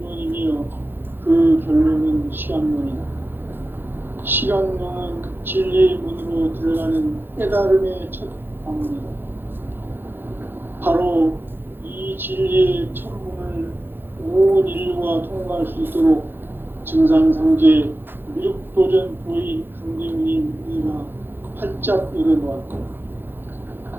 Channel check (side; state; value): left; late; 0.10 ms